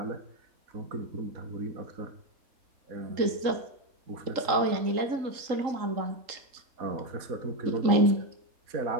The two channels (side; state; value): left; late; 3.8 ms